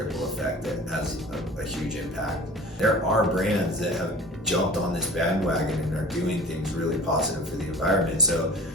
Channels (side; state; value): both; normal; correlation 0.41